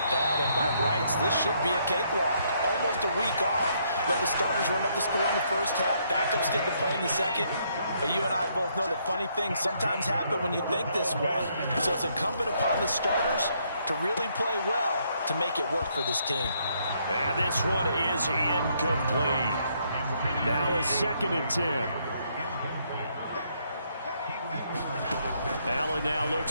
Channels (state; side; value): inverted; both; correlation -0.72